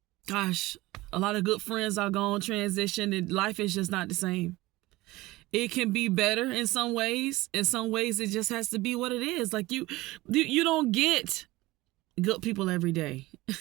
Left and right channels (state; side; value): quieter; left; 19.4 dB